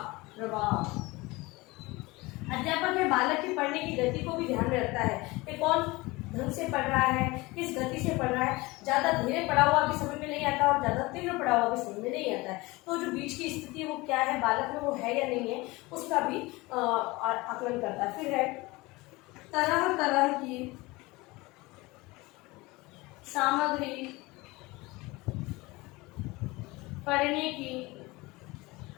प्रवाह। अध्यापक है बालक की पढ़ने की गति को भी ध्यान में रखता है कि कौन ढंग से पढ़ रहा है, किस गति से पढ़ रहा है। ज्यादा धीरे पढ़ा हुआ भी समझ में नहीं आता और ज्यादा तीव्र पढ़ा हुआ भी समझ में नहीं आता है। तो जो बीच की स्थिति है वो क्या है, बालक में वो है या नहीं है, उसका भी आकलन करता है। फिर है तरह तरह की सामग्री पढ़ने की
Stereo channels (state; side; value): quieter; right; 22.3 dB